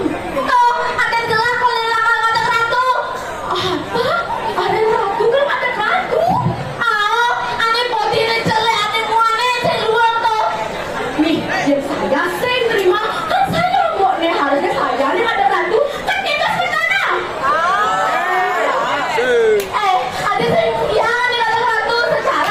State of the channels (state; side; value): identical; both; correlation 1.00